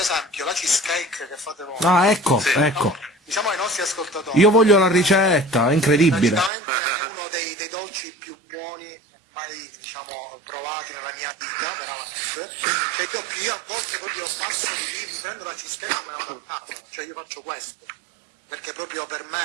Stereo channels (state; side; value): drops out; left; at 6.5 s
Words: la cheesecake che fate voi... Ah, ecco, sì, ecco. Diciamo ai nostri ascoltatori... Io voglio la ricetta, è incredibile. Praticamente è uno dei dolci più buoni mai, diciamo, provati nella mia vita, veramente. Cioè io a volte proprio passo di lì, mi prendo la cheesecake e me la vado a casa, cioè io faccio questo, perché proprio per